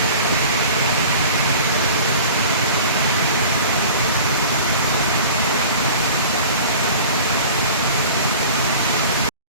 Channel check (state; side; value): inverted; both; correlation -0.41